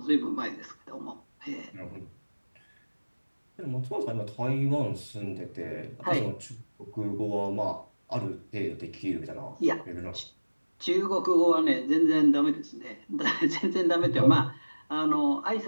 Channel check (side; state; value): both; inverted; correlation -1.00